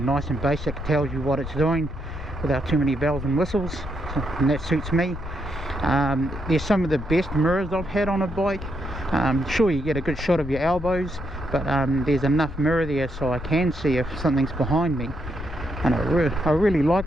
and basic. Tells you what it's doing without too many bells and whistles, and that suits me. There's some of the best mirrors I've had on a bike. Sure, you get a good shot of your elbows, but there's enough mirror there so I can see if something's behind me, and I really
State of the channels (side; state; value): left; noise; rumble, 9 dB below the sound